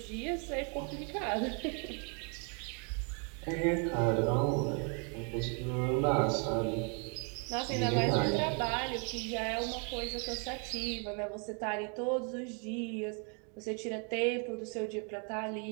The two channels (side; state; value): left; quieter; 38.6 dB